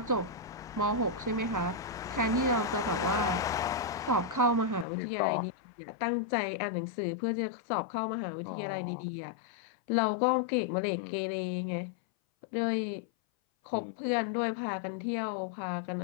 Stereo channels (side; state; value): right; drops out; at 4.9 s